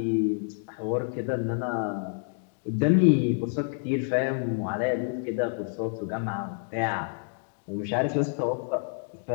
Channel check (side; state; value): right; silent; digital silence